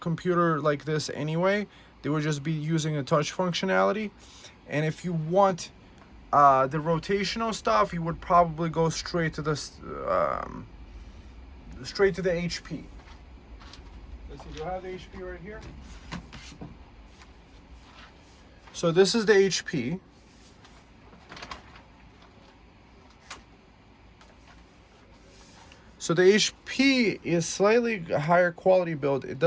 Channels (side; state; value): both; identical; correlation 1.00